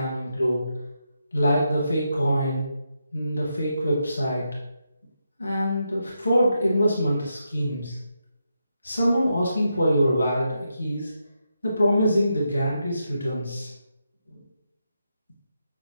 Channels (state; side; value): inverted; both; correlation -0.84